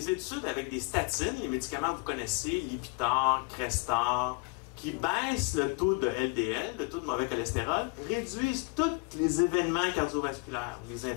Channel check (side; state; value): right; quieter; 30.2 dB